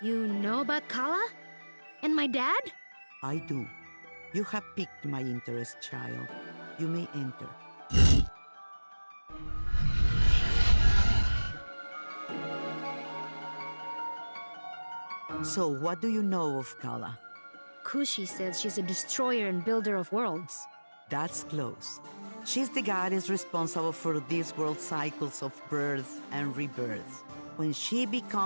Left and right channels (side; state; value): both; inverted; correlation -1.00